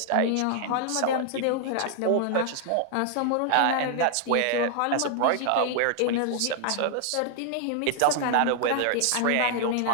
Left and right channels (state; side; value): different; both; correlation 0.00